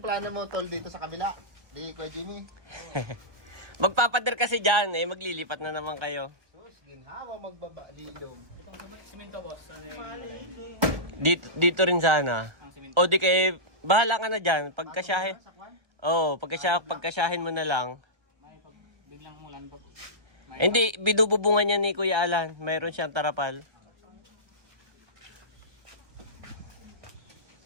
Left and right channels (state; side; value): late; left; 1.3 ms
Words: mo tol dito sa kabila? Di Kuya Jimmy? Magpapader kasi dyan eh, maglilipat na naman kayo. Sus, ginhawa magbaba lilom. Dito rin sana. O di kay, bahala ka na dyan. Pagkasyahin. Oh, pagkasyahin mo na lang. Biglang mulan pag Hindi, binububungan niya ni Kuya Alan. Mayroon siyang tarapal.